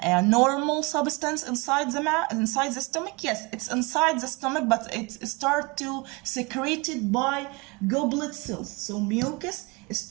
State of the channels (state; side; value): quieter; left; 27.2 dB